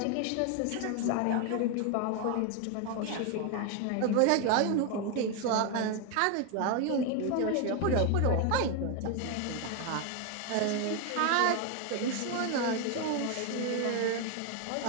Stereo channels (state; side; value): different; both; correlation 0.01